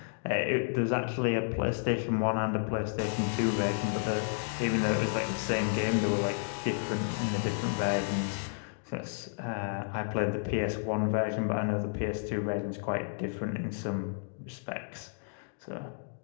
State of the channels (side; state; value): right; silent; digital silence